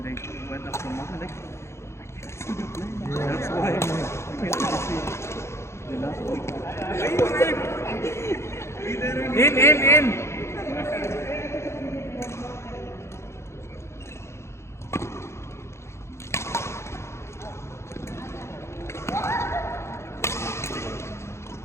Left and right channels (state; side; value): late; right; 0.13 ms